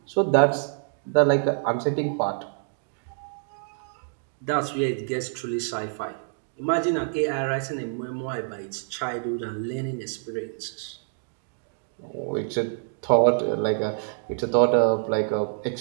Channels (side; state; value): left; silent; digital silence